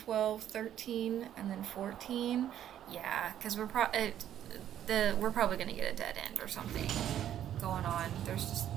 13, and then 14. Yeah, because we're probably gonna get a dead end or something going on. There's just,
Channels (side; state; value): left; quieter; 10.9 dB